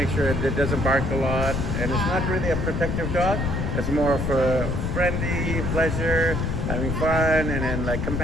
sure that it doesn't bark a lot, and it's not really a protective dog. It's more for friendly pleasure, having fun, and then like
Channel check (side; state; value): left; noise; rumble, 1 dB below the sound